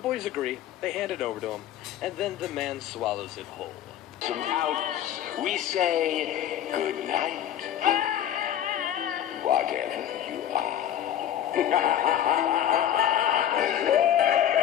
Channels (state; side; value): quieter; right; 10.9 dB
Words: agree, they hand it over to him, and then the man swallows it whole. Out, we say good night, whatever you